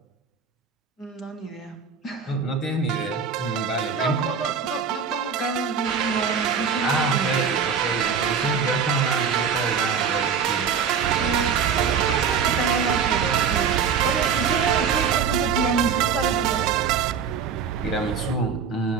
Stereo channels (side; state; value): left; quieter; 6.5 dB